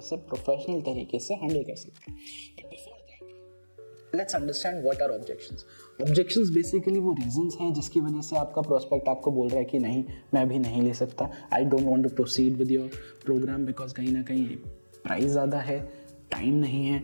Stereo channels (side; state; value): both; inverted; correlation -1.00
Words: से, प्रोफेशनल तरीके से हैंडल कर सकते हैं। Let's understand what are objections. Objections basically वो रीजंस हैं जिसकी वजह से आपका प्रोस्पेक्ट आपको बोल रहा है कि नहीं, मैं भी नहीं ले सकता, I don't want to proceed with your programme because कहीं ना कहीं प्राइस ज़्यादा है, टाइम नहीं है,